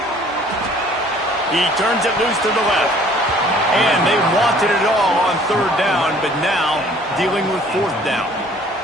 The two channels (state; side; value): normal; both; correlation 0.55